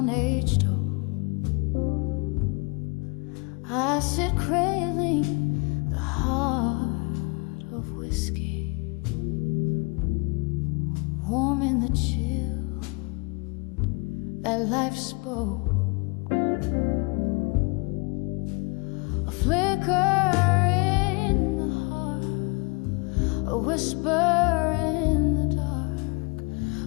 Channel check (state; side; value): quieter; right; 30.8 dB